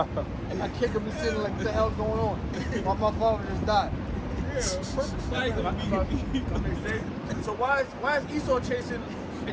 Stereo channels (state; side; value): identical; both; correlation 1.00